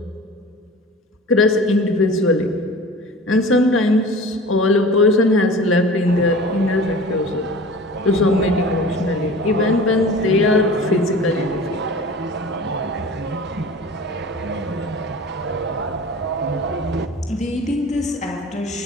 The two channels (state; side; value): normal; both; correlation 0.39